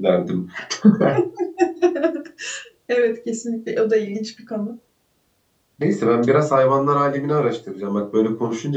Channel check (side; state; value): both; identical; correlation 1.00